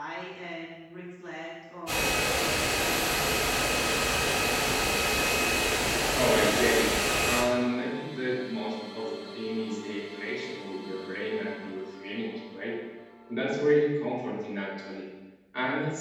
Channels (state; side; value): identical; both; correlation 1.00